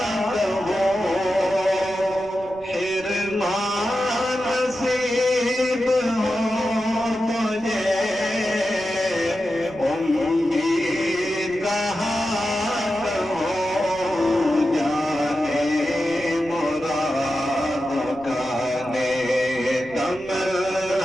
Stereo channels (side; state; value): right; noise; rumble, 22 dB below the sound